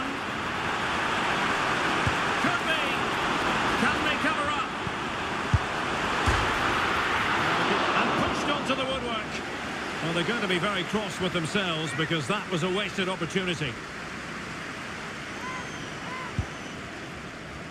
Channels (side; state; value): both; identical; correlation 1.00